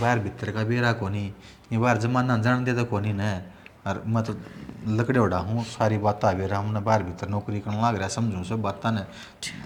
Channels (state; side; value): identical; both; correlation 1.00